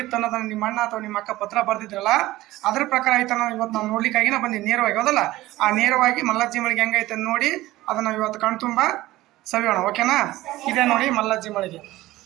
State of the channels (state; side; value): quieter; left; 17.2 dB